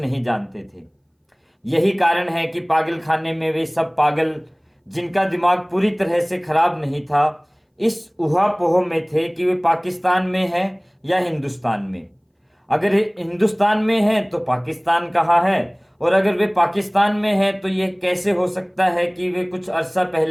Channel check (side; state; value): both; identical; correlation 1.00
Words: जानते थे। यही कारण है कि पागल खाने में वे सब पागल जिनका दिमाग पूरी तरह से खराब नहीं था इस उहापोह में थे कि वे पाकिस्तान में हैं या हिंदुस्तान में। अगर हिंदुस्तान में हैं तो पाकिस्तान कहाँ है, और अगर वे पाकिस्तान में हैं तो यह कैसे हो सकता है कि वे कुछ अरसा